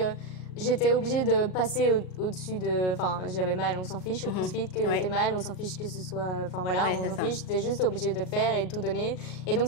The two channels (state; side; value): late; right; 38 ms